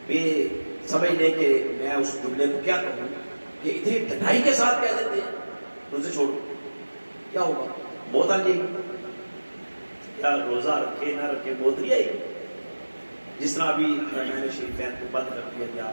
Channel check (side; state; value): both; inverted; correlation -1.00